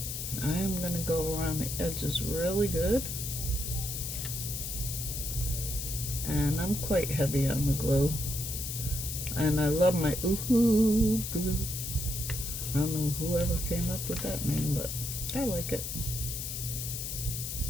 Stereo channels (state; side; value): noise; left; hiss, 5 dB below the sound